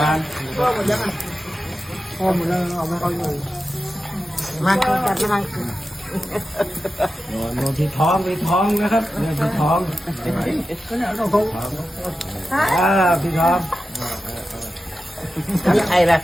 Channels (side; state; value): both; normal; correlation 0.92